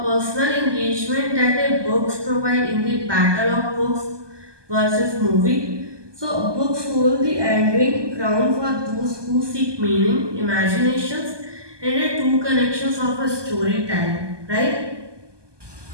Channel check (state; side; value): late; left; 1.2 ms